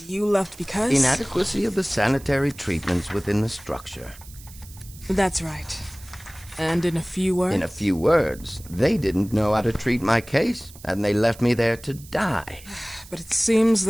you left because? Inadequacy of the sanitary treatments within the structure. That's right. And in a few words? In a few words, they didn't know how to treat my case, and they left me there to die. But it seems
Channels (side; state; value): right; noise; hiss, 20 dB below the sound